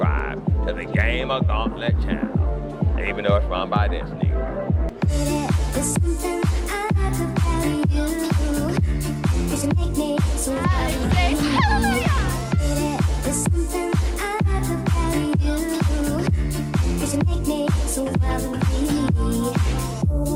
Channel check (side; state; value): both; identical; correlation 1.00